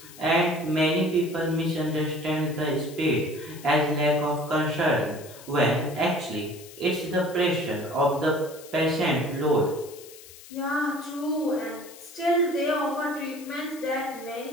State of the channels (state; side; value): noise; left; hiss, 18 dB below the sound